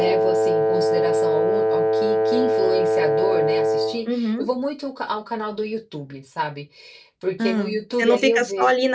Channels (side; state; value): both; identical; correlation 1.00